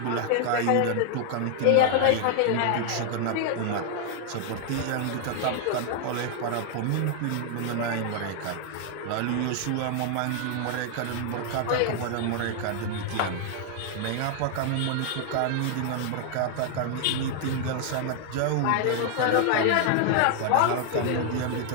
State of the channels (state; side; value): different; both; correlation 0.00